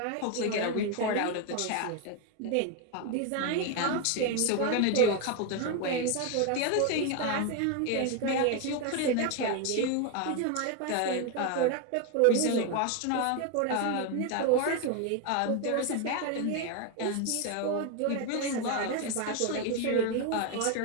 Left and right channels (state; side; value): different; both; correlation 0.01